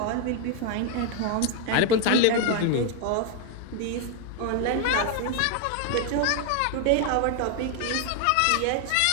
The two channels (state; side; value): different; both; correlation 0.00